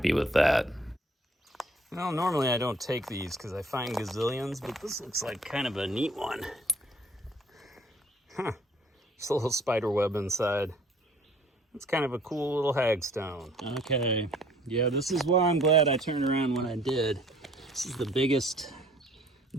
with that. Well, normally I don't take these because I find gazillions, but this looks like kind of a neat one. Huh, just a little spider web inside. It's kind of a cool little hagstone. Okay, yeah, this is why I'm glad I turned around when I did. This is the biggest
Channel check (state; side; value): normal; both; correlation 0.57